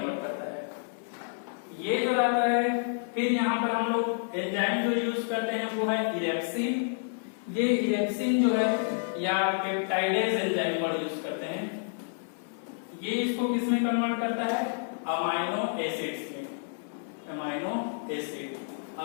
करता है। ये जो रहता है, फिर यहाँ पर हम लोग एंजाइम जो यूज करते हैं वो है इरेप्सिन। ये इरेप्सिन जो है या पेप्टाइडेज एंजाइम वर्ड यूज करते हैं, ये इसको किसमें कन्वर्ट करता है? अमाइनो एसिड्स में। अमाइनो एसिड,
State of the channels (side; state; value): right; silent; 55 dB below the other